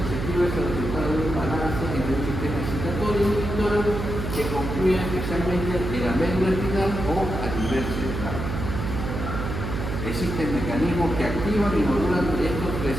es el resultado de un balance entre un sistema excitatorio y inhibidor que concluye especialmente en la médula espinal o a nivel cerebral. Existen mecanismos que activan y modulan estos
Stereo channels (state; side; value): noise; right; hum, 4 dB below the sound